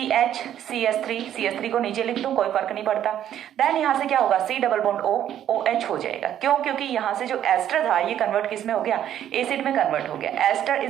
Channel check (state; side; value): quieter; left; 10.8 dB